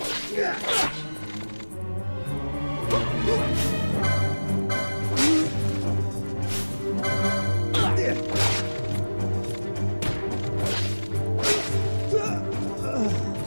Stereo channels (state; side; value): inverted; both; correlation -1.00